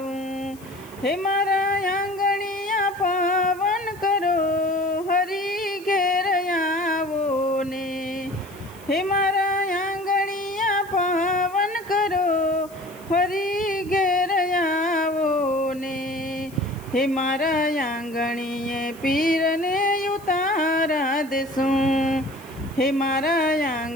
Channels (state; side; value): noise; left; hiss, 23 dB below the sound